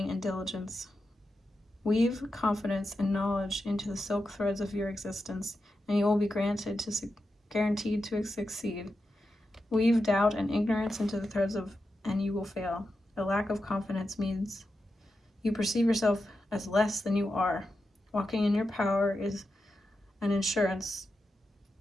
and diligence. Weave confidence and knowledge into the silk threads of your existence, and you will be guaranteed to succeed. Weave doubt and ignorance into the threads and you will fail. A lack of confidence means you perceive yourself as less than you are. Walking in your power is an insurance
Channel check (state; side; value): normal; both; correlation 0.89